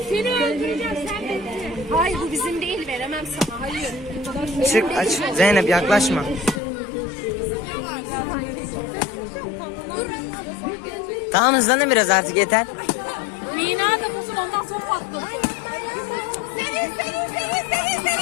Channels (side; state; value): right; drops out; at 6.6 s